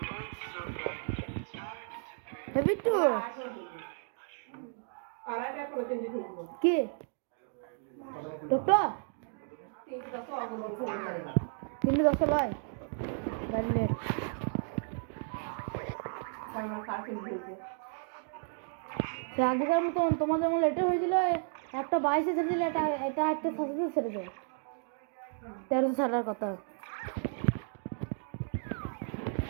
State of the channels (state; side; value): silent; left; 56 dB below the other